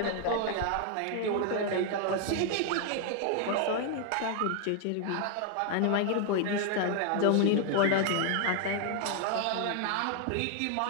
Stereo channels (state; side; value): different; both; correlation 0.00